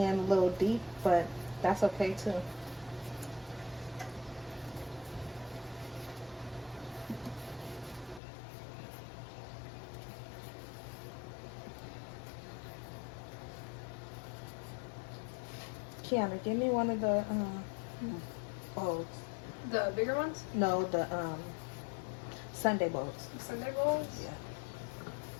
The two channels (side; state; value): right; drops out; at 8.2 s